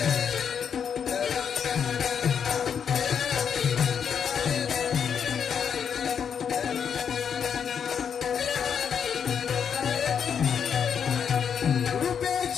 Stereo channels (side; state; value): right; quieter; 7.4 dB